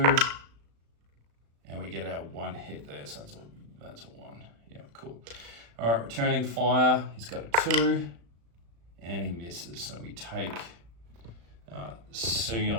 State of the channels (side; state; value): left; late; 35 ms